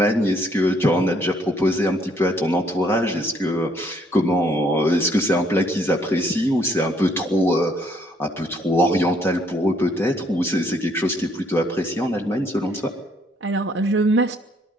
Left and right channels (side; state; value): both; normal; correlation 0.67